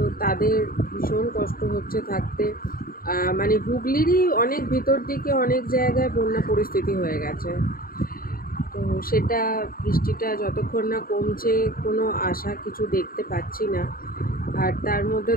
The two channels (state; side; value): late; right; 0.42 ms